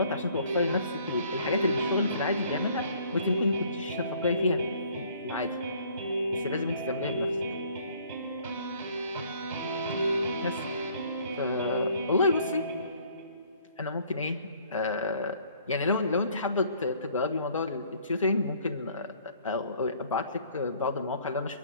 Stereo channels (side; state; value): both; inverted; correlation -0.58